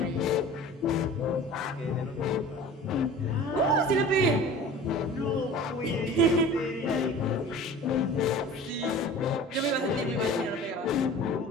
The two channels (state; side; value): normal; both; correlation 0.40